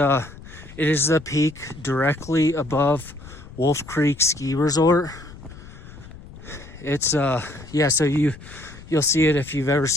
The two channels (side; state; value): left; noise; rumble, 17 dB below the sound